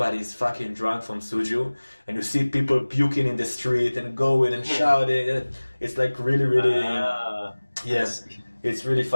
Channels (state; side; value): inverted; both; correlation -1.00